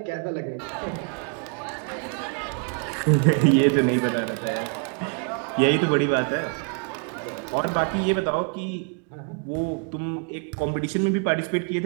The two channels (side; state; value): left; quieter; 40.0 dB